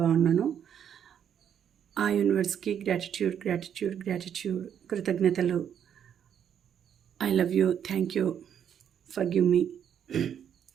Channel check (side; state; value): left; quieter; 8.9 dB